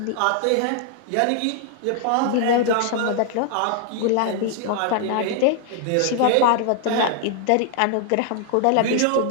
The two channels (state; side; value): different; both; correlation 0.00